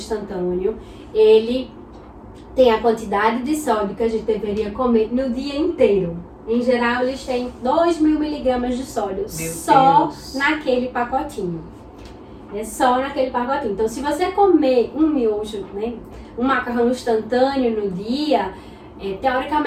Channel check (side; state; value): both; identical; correlation 1.00